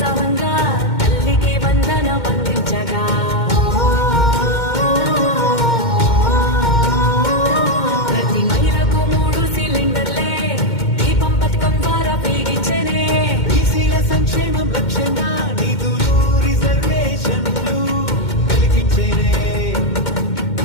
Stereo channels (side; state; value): right; late; 2.1 ms